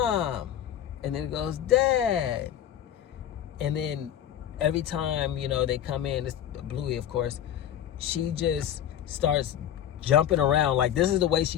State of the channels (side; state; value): right; quieter; 10.6 dB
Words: and then it goes, Dad. And then every time, they come in, it's Bluey, of course, she just starts jumping around. Like, this is the way